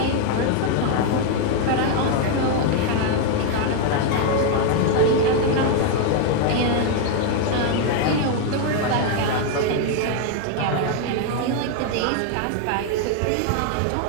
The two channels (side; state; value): both; different; correlation 0.00